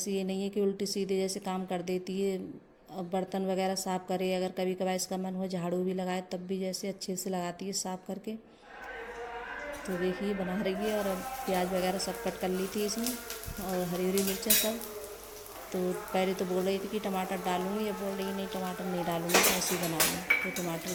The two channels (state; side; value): identical; both; correlation 1.00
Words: ये नहीं है कि उल्टी सीधे जैसे काम कर देती है। अब बर्तन वगैरह साफ़ करे, अगर कभी कभार इसका मन हो झाड़ू भी लगाए तब भी जैसे अच्छे से लगाती है साफ़ करके। तो देखिए बना रही है। और अब प्याज वगैरह सब कट कर ली थी इसमें, और हरी हरी मिर्चें सब। तो पहले तो बोल रही थी कि टमाटर डालूंगी, अब बोल रही नहीं टमाटर नहीं डालूंगी, तो ऐसे ही बनाऊंगी। तो टमाटर